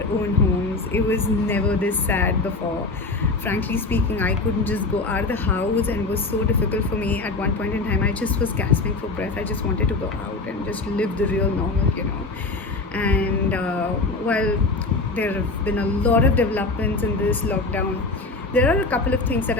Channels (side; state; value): right; quieter; 3.4 dB